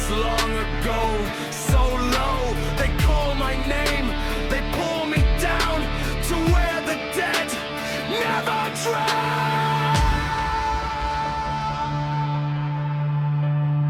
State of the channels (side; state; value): both; identical; correlation 1.00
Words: long ago, so low. They call my name, they pull me down to where the dead never drown.